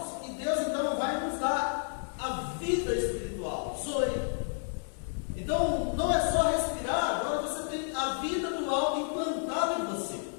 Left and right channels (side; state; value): right; silent; digital silence